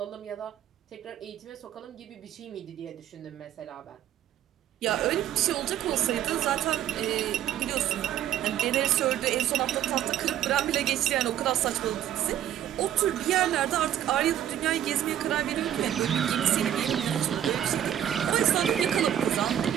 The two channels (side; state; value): left; quieter; 11.0 dB